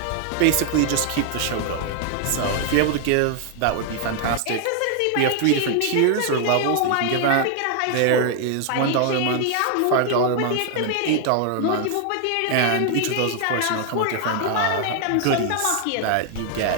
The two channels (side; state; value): both; different; correlation 0.00